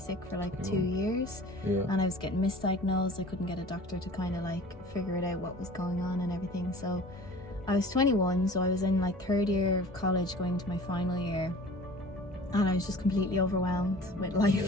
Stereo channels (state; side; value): normal; both; correlation 0.44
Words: for like 2 years, and I was getting misdiagnosed. I couldn't get a doctor to kind of like figure it out what was going on and everything. So I was 21, so I was in like third year of college going into my final year, and I was just completely overwhelmed with